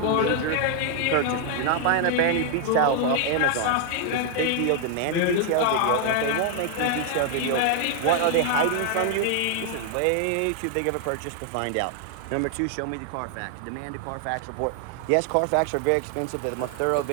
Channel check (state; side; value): different; both; correlation 0.00